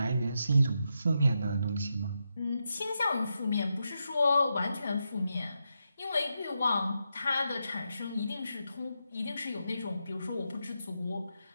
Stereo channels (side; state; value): both; inverted; correlation -0.86